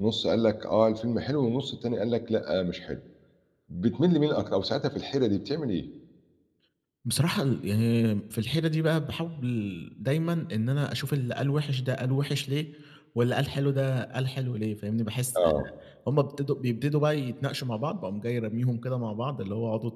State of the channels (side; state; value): both; identical; correlation 1.00